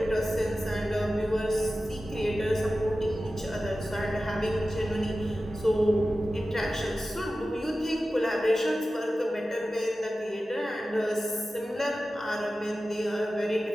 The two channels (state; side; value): normal; both; correlation 0.94